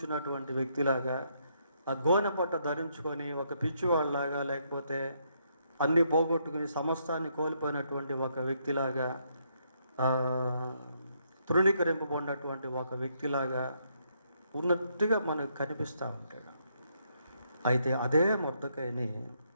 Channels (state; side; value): inverted; both; correlation -0.75